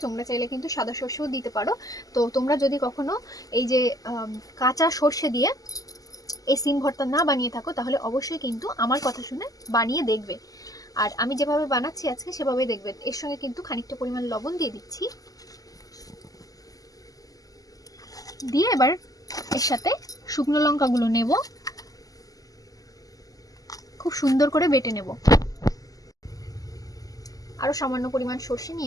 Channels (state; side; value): late; right; 0.17 ms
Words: তোমরা চাইলে কিন্তু সাদা সর্ষেও দিতে পারো। তো তোমরা যদি কখনো এই যে কাঁচা সর্ষে দিয়ে এই সিম ভর্তা না বানিয়ে থাকো তাহলে অবশ্যই কিন্তু আমার কথা শুনে বানিয়ে দেখবে। আর আমি যেভাবে বানাচ্ছি আজকে সেভাবেই দেখবেন। এর সঙ্গে কিন্তু খানিকটা পরিমাণ লবণ দিয়ে দিচ্ছি, দিয়ে এবার এর সাথে শুকনো লঙ্কাগুলো নেব, খুব সুন্দর করে বেটে নেব। আরো সামান্য পরিমাণ সর্ষে